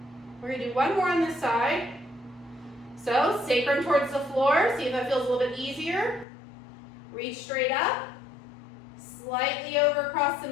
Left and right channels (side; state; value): right; drops out; at 6.2 s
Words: We're going to do 1 more on this side. So, sacrum towards the floor. See if that feels a little bit easier. Reach straight up. Slightly over across the